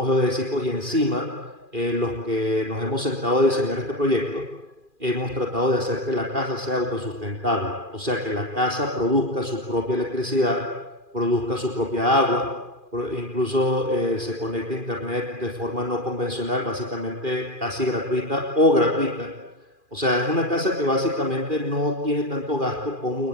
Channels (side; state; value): left; late; 2.4 ms